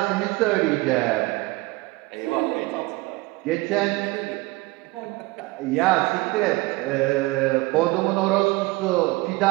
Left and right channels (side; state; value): left; quieter; 22.2 dB